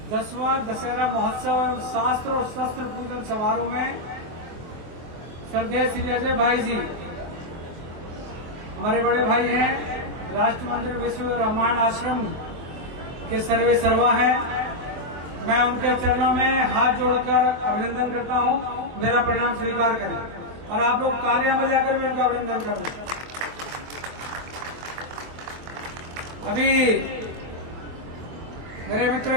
10वां दशहरा महोत्सव एवं शास्त्र और शस्त्र पूजन समारोह में श्रद्धेय श्री अजय भाई जी हमारे बड़े भाई हैं, राष्ट्र मंदिर विश्व रामायण आश्रम के सर्वे सर्वा हैं। मैं उनके चरणों में हाथ जोड़कर अभिनंदन करता हूं, मेरा प्रणाम स्वीकार करें और आप लोग तालियां बजाकर भी उनका अभिनंदन करना। अभी मेरे मित्र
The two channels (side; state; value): left; late; 24 ms